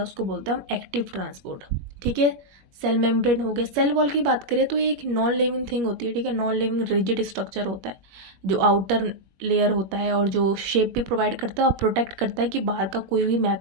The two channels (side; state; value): left; late; 21 ms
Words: उसको बोलते हैं हम एक्टिव ट्रांसपोर्ट, ठीक है। सेल मेम्ब्रेन हो गया। सेल वॉल की बात करें तो ये एक नॉन लिविंग थिंग होती है, ठीक है, नॉन लिविंग रिजिड स्ट्रक्चर होता है, जो आउटर लेयर होता है और जो शेप भी प्रोवाइड करता है और प्रोटेक्ट करता है कि बाहर का कोई भी